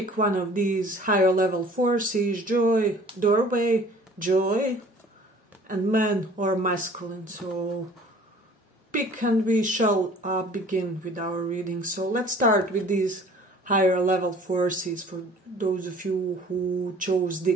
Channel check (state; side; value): normal; both; correlation 0.50